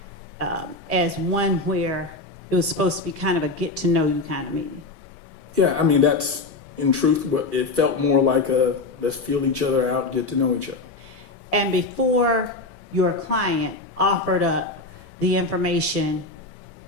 as one where it was supposed to be kind of a get-to-know-you kind of meeting? Yeah, I mean, that's, in truth, what it felt more like a let's feel each other out, get to know each other. And before your client offered up the information,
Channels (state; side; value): quieter; right; 3.2 dB